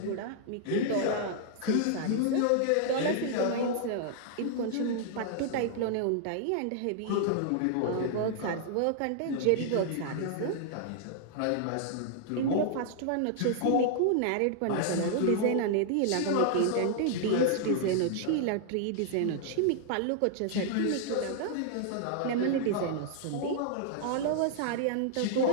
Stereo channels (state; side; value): different; both; correlation -0.01